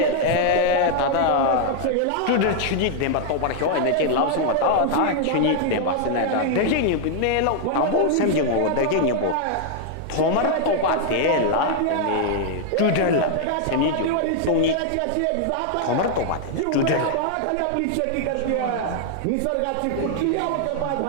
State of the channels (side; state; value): both; different; correlation 0.00